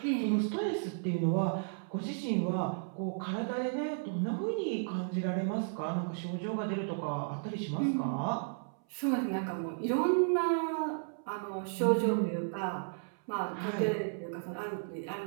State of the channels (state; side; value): silent; left; 55 dB below the other